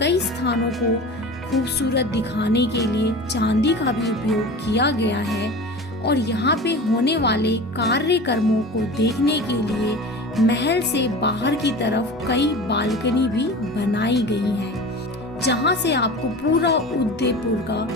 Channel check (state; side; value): normal; both; correlation 0.34